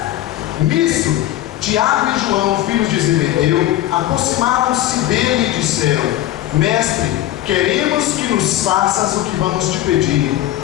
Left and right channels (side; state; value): right; quieter; 13.9 dB